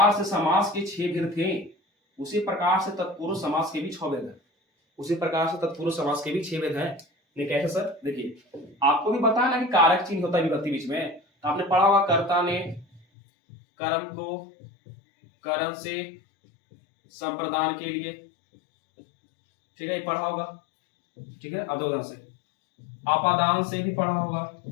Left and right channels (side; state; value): right; drops out; at 13.1 s